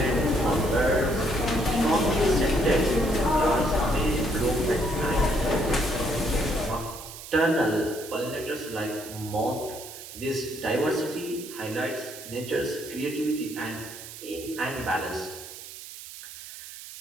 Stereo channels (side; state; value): right; noise; hiss, 13 dB below the sound